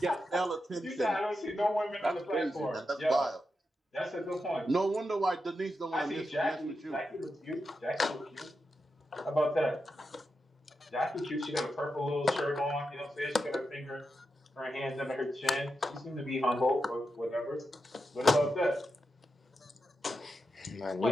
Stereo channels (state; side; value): normal; both; correlation 0.88